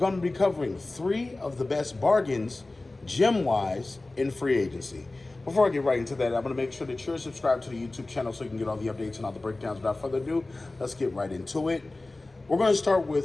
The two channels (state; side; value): quieter; right; 3.0 dB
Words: to be covering 3 of the best bargains, gem-wise, in free agency. Before I get right into that, I'm going to make sure that you're subscribed to the YouTube channel so you can get all the updates and all the breakdowns. Without further ado, let's get right into it. We're going to start